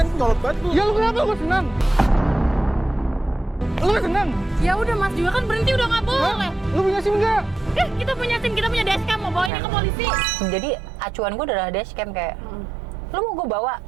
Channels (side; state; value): left; drops out; at 9.5 s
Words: nyolot banget lu. Ya lu kenapa? Gue senang. Lu senang? Ya udah Mas juga kan berhenti udah nggak boleh. Lu punya SIM nggak? Kita punya SIM, kita punya dashcam, mau bawa ini ke polisi. Jadi acuan gue adalah dashcam kayak lu mau gue bawa